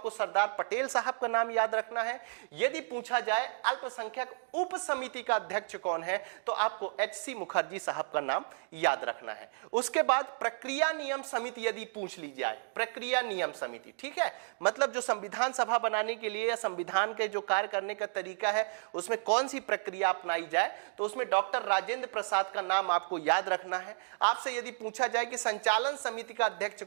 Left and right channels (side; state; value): left; silent; digital silence